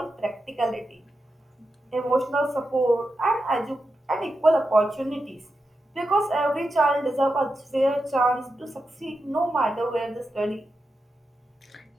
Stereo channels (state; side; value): normal; both; correlation 0.89